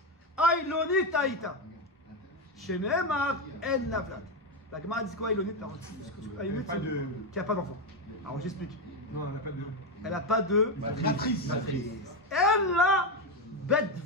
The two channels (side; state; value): both; normal; correlation 0.09